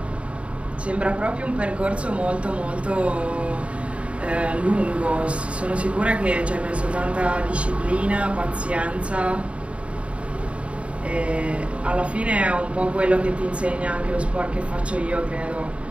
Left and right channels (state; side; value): late; left; 0.062 ms